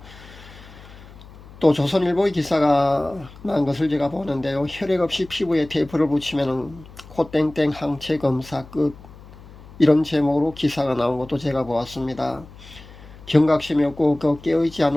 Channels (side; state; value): left; noise; hum, 19 dB below the sound